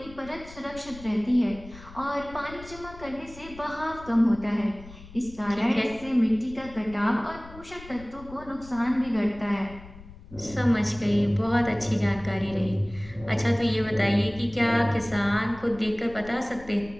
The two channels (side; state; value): left; noise; rumble, 18 dB below the sound